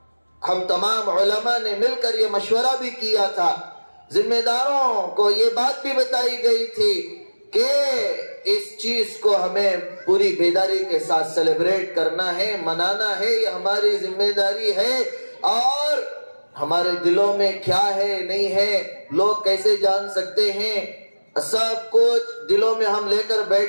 ہم تمام علماء نے مل کر یہ مشورہ بھی کیا تھا، ذمہ داروں کو یہ بات بھی بتائی گئی تھی کہ اس چیز کو ہمیں پوری بیداری کے ساتھ سیلیبریٹ کرنا ہے، منانا ہے، یہ ہماری ذمہ داری ہے۔ اور ہمارے دلوں میں کیا ہے نہیں ہے لوگ کیسے جان سکتے ہیں؟ سب کچھ دلوں میں ہم لے کر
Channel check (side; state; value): both; inverted; correlation -1.00